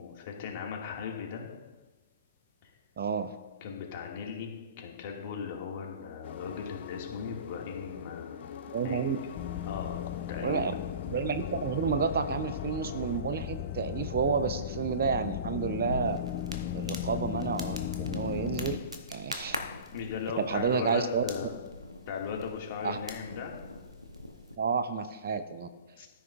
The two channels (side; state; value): both; inverted; correlation -0.36